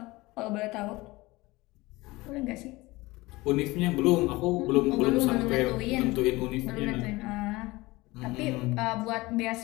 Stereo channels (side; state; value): right; quieter; 21.2 dB